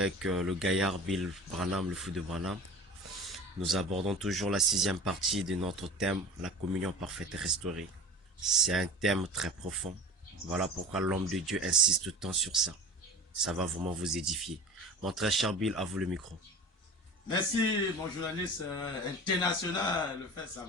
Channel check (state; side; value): normal; both; correlation 0.36